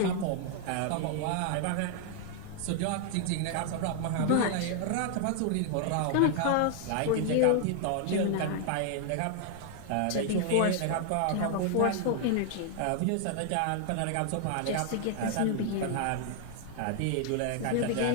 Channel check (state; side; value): different; both; correlation 0.00